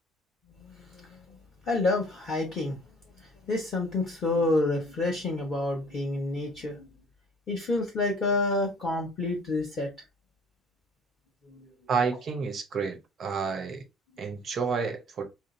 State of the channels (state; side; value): normal; both; correlation 0.52